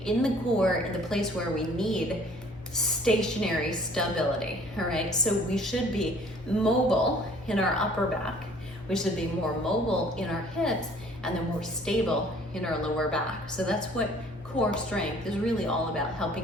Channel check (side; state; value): both; normal; correlation 0.55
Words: in the core, in the place where we need stationary stability, all right? So we should be mobile in our upper back, we should be more mobile in our hips, and then more stable in our lower back. So that's what core strength is really all about,